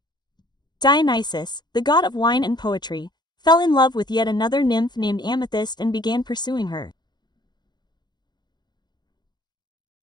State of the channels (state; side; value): late; right; 0.21 ms